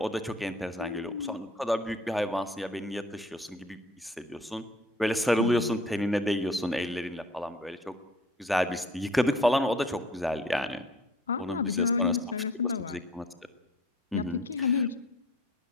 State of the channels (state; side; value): normal; both; correlation 0.51